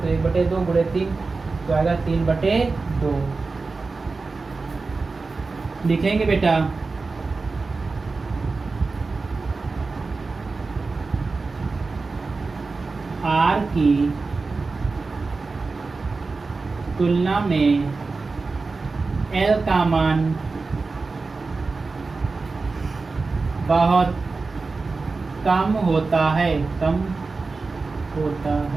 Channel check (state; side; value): quieter; left; 4.0 dB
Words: हो, 1/2 गुणे 3 तो आएगा 3/2 लिखेंगे बेटा। r की तुलना में l का मान बहुत कम होता है,